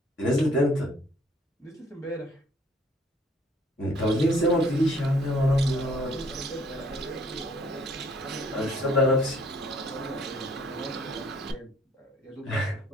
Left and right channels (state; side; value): normal; both; correlation 0.60